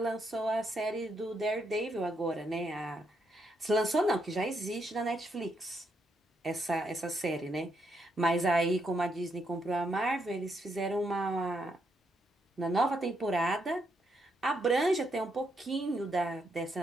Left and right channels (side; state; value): both; normal; correlation 0.78